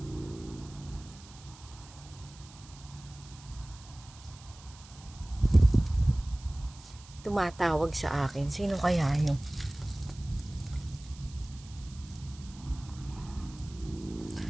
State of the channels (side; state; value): right; noise; hiss, 20 dB below the sound